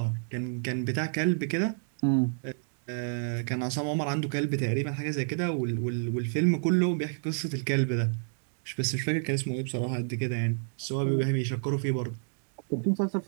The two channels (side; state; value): left; silent; digital silence